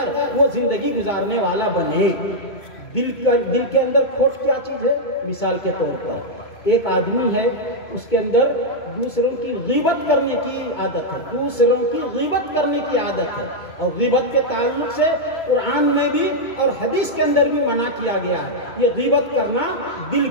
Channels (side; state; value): right; late; 2.2 ms